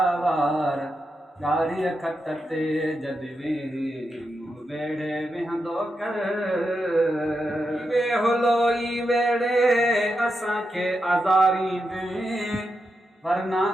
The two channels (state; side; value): normal; both; correlation 0.86